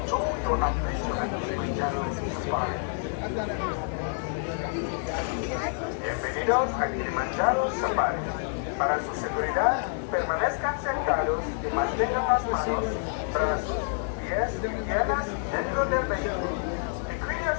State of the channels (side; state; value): right; silent; 59 dB below the other